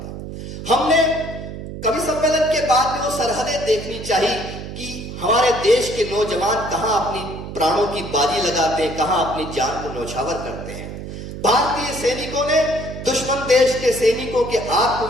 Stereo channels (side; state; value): right; noise; hum, 9 dB below the sound